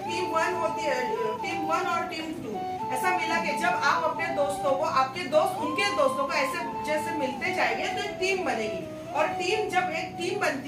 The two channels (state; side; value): identical; both; correlation 1.00